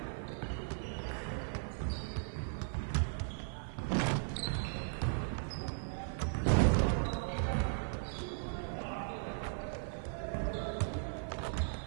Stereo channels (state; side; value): silent; left; 53 dB below the other